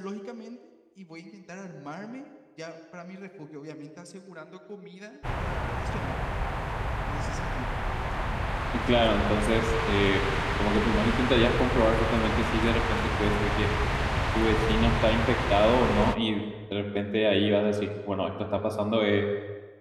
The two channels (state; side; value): identical; both; correlation 1.00